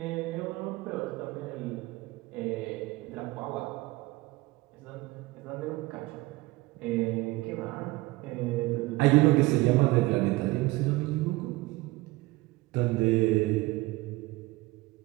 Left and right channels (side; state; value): left; quieter; 20.9 dB